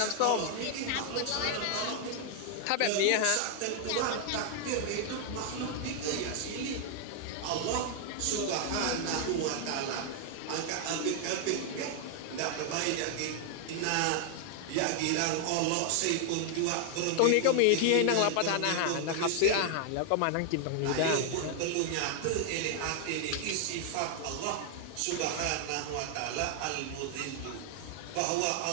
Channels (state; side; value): different; both; correlation 0.00